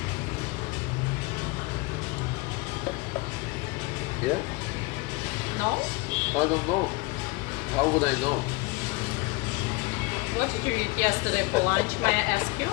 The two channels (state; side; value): quieter; right; 23.1 dB